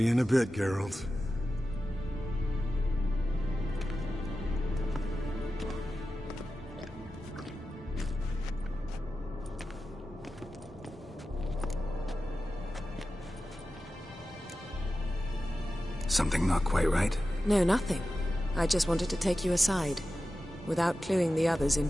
you in a bit, Geralt. Something not quite right? No, nothing. I just wanted to take you aside, without cluing the others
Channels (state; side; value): normal; both; correlation 0.93